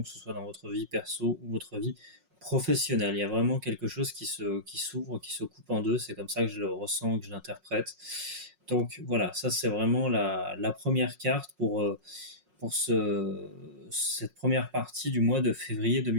que ce soit dans votre vie perso ou votre vie professionnelle. Il y a vraiment quelque chose qui s'ouvre, qui se coupe en deux. C'est comme ça que je le ressens, que je l'interprète. Donc voilà, ça c'est vraiment la première carte pour cette première partie du mois de février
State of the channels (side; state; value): left; late; 5.5 ms